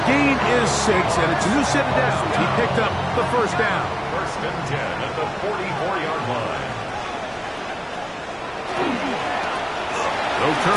gain is 6, and it's a new set of downs. He picked up the 1st down. 1st and 10 at the 44-yard line. They'll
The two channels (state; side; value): identical; both; correlation 1.00